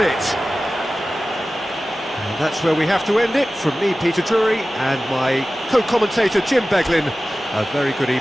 And that's where we have to end it. From me, Peter Drury, and my co-commentator, Jim Beglin. A very good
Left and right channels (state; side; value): normal; both; correlation 0.96